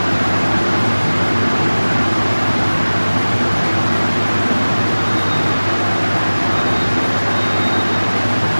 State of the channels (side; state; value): both; inverted; correlation -1.00